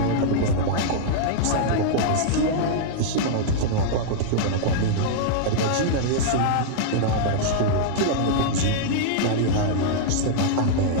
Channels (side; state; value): both; different; correlation -0.02